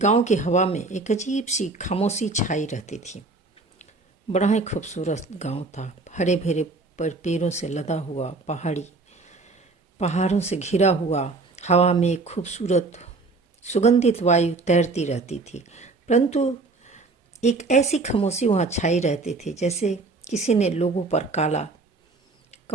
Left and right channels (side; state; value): left; quieter; 3.6 dB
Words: की हवा में एक अजीब सी खामोशी छाई रहती थी। बड़ा ही खूबसूरत गांव था, हरे भरे पर पेड़ों से लदा हुआ, पहाड़ों से घिरा हुआ। हवा में एक खूबसूरत सुगंधित वायु तैरती रहती थी, परंतु एक ऐसी खामोशी वहाँ छाई रहती थी जैसे किसी ने लोगों पर काला